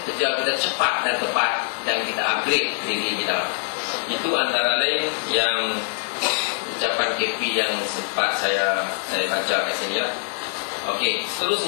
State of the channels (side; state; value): right; silent; digital silence